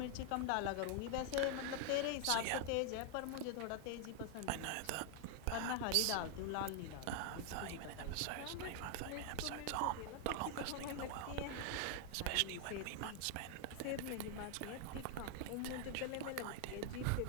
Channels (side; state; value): both; different; correlation 0.00